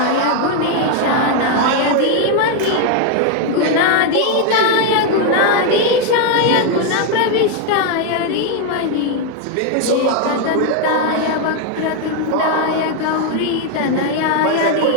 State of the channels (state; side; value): different; both; correlation 0.01